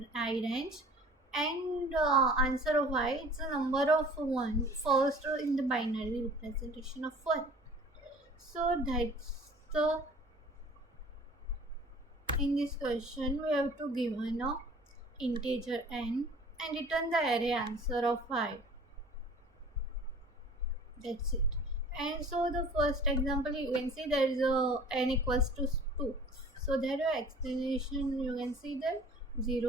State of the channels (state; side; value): normal; both; correlation 0.47